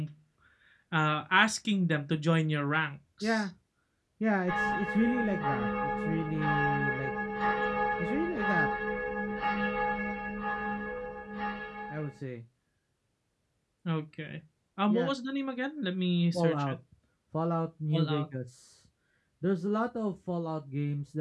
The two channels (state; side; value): identical; both; correlation 1.00